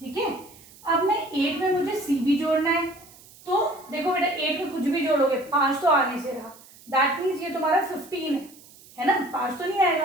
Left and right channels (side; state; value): right; noise; hiss, 23 dB below the sound